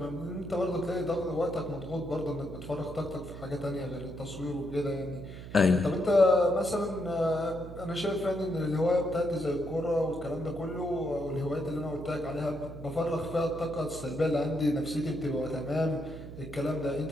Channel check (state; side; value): noise; right; hum, 12 dB below the sound